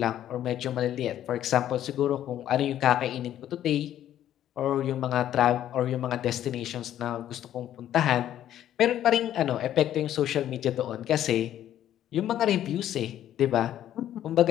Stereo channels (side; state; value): right; quieter; 11.6 dB